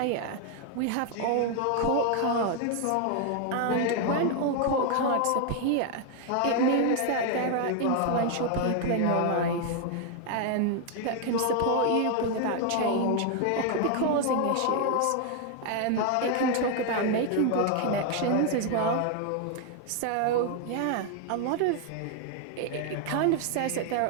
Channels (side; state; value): both; different; correlation 0.00